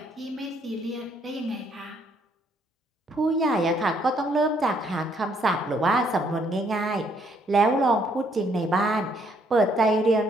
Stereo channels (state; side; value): normal; both; correlation 0.68